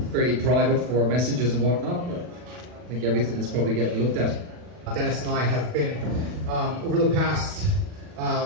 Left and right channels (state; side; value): late; left; 40 ms